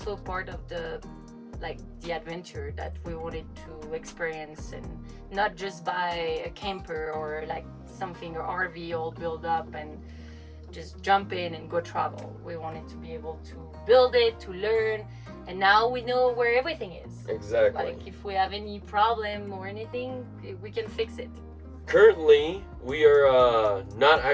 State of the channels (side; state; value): both; identical; correlation 1.00